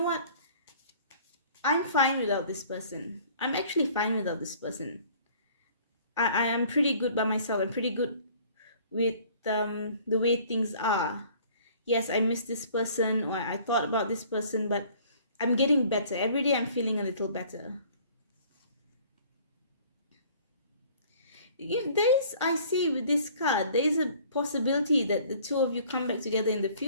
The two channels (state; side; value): inverted; both; correlation -0.53